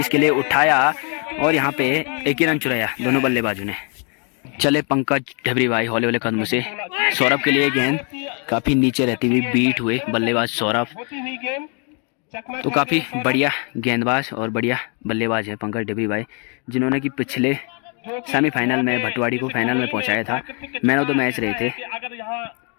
के लिए उठाया और यहाँ पे 1 ही रन चुराया दोनों बल्लेबाजों ने। चले पंकज ढेबरी भाई हौले हौले कदम से सौरभ के लिए गेंद काफी नीचे रहती हुई बीट हुए बल्लेबाज सौरभ। तो काफी बढ़िया गेंदबाज और बढ़िया बल्लेबाज है पंकज ढेबरी भाई, जिन्होंने कि पिछले सेमीफाइनल में भटवाड़ी को फाइनल में पहुंचाया था, मैन ऑफ द मैच रहे थे।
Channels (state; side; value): quieter; right; 37.0 dB